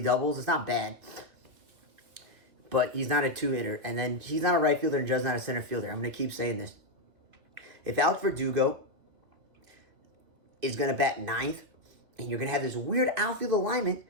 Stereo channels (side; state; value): left; late; 2.8 ms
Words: doubles. It's not bad. But he's not a 2-hitter. And then he's not a right fielder and Judge's not a center fielder. I'm going to keep saying this. If Alex Verdugo is going to bat 9th, and you're going to have this weird outfield alignment,